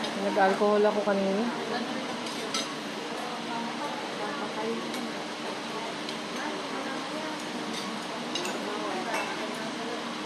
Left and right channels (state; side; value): identical; both; correlation 1.00